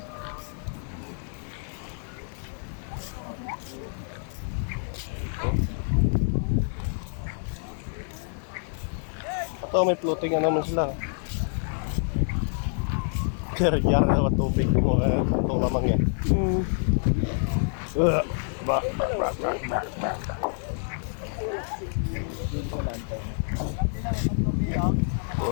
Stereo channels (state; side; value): silent; right; 57 dB below the other